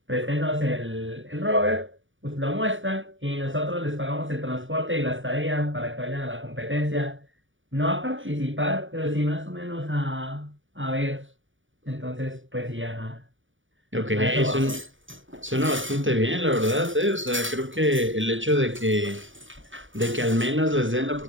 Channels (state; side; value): late; left; 0.57 ms